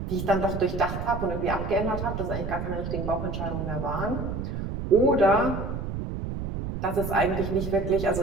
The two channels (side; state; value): right; noise; rumble, 5 dB below the sound